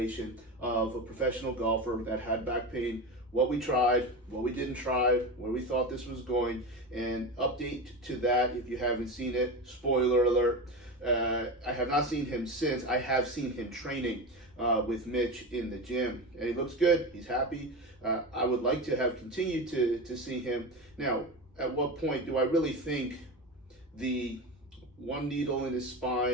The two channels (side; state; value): both; normal; correlation 0.23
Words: of a professional golfer that had back pain, what we tried, what we didn't try, where we thought this was going, and update to that if you haven't seen it. Spoiler alert, I have not seen him since. I have seen him training with Mitch in the gym, and he looks good. He's happy. I would like to have continued to see him. Now, at what point do I really think the one needle in his